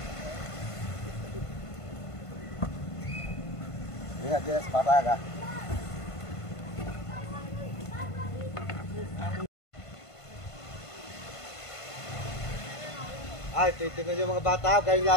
Lihat dia sepatah kah? Ay, titignan nyo mga bata, kayo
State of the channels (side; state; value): right; late; 1.5 ms